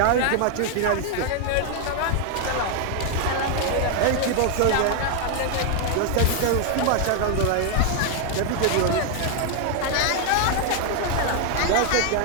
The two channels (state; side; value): different; both; correlation 0.00